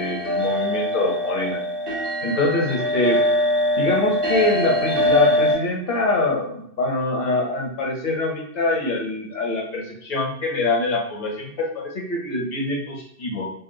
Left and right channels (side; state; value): left; late; 2.6 ms